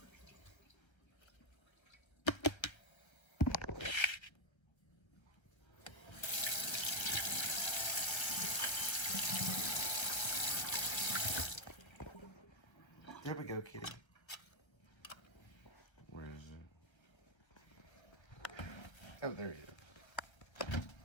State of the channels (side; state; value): right; late; 1.3 ms